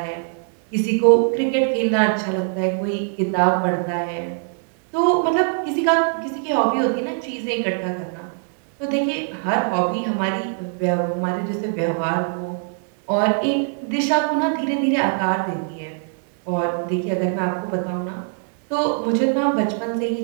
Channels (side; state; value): left; silent; 56 dB below the other